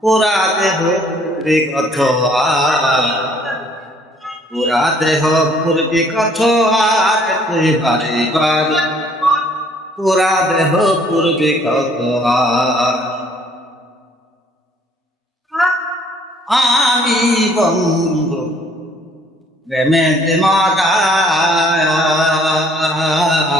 পুরা দেহ পূর্বী কত পুরা দেহ পূর্বী কত আর তুই বারে বার পুরা দেহ পূর্বী কত আমি বন্ধু প্রেমেতে মারা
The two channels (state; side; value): normal; both; correlation 0.60